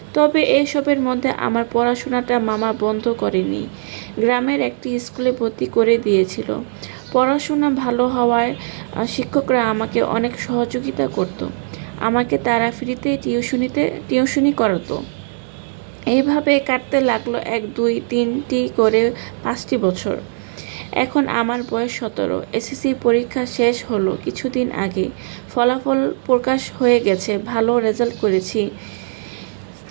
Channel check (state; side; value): silent; left; 66 dB below the other